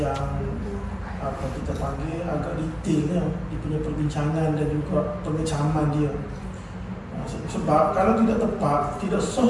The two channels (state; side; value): identical; both; correlation 1.00